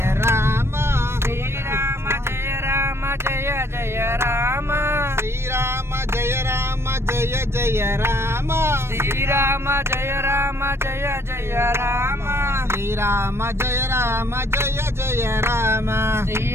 రామ శ్రీరామ జయ రామ జయ జయ రామ శ్రీరామ జయ రామ జయ జయ రామ శ్రీరామ జయ రామ జయ జయ రామ శ్రీరామ జయ రామ జయ జయ రామ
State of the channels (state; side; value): late; left; 0.12 ms